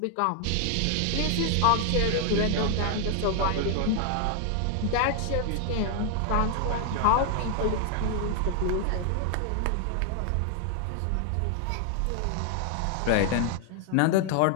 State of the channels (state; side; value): different; both; correlation 0.00